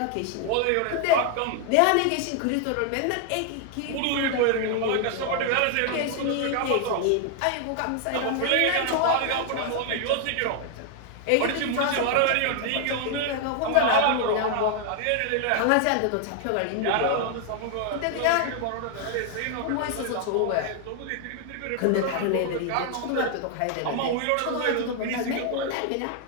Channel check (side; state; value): both; different; correlation 0.00